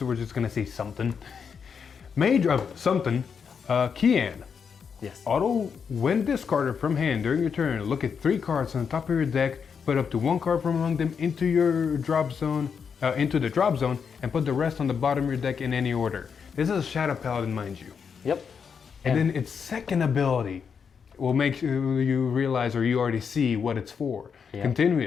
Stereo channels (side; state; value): right; quieter; 6.5 dB